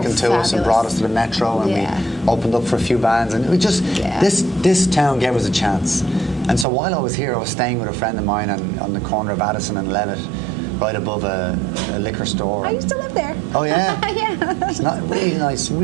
to us and brought us to the Metro, and we opened up for a few bands, and we just this town gave us a chance. And so while I was here, I was staying with a friend of mine on the corner of Addison and Levitt, right above a liquor store. I used to live there. Oh yeah, yeah. It's not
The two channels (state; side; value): drops out; left; at 6.7 s